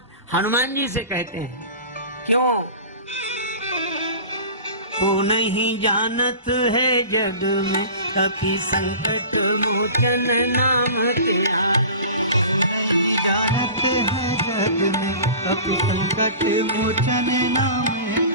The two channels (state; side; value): inverted; both; correlation -0.38